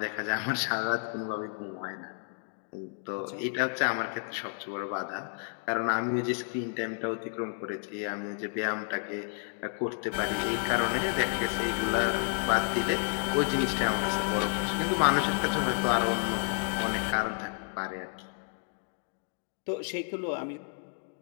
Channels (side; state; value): right; silent; 57 dB below the other